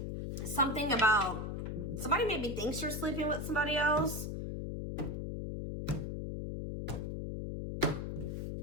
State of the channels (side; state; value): left; noise; hum, 4 dB below the sound